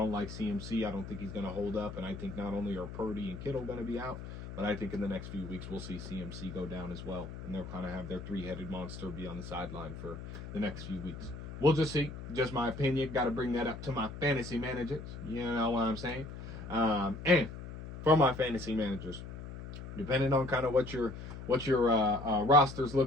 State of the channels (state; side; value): noise; left; hum, 10 dB below the sound